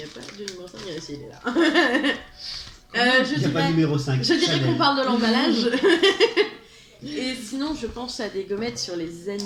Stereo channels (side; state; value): both; identical; correlation 1.00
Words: a pas de numéro 5, il est là. Je Il n'y a pas de dirais, numéro 5. je dirais qu'on parle de l'emballage. Et sinon, je pense à des gommettes sur les